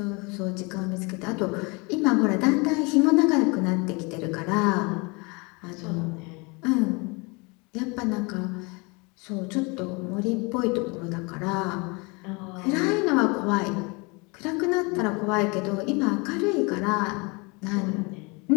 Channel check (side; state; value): right; quieter; 28.6 dB